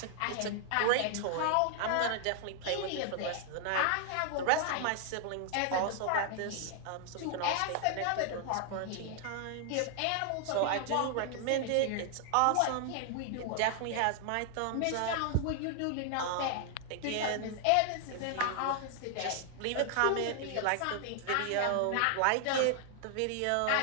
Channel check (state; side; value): different; both; correlation 0.00